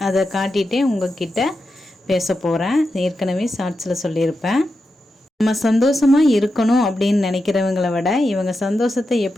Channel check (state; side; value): normal; both; correlation 0.89